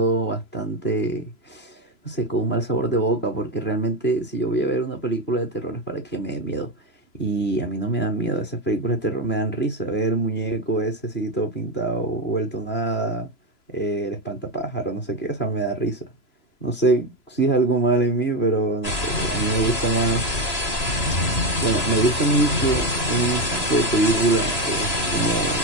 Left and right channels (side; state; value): right; late; 3.0 ms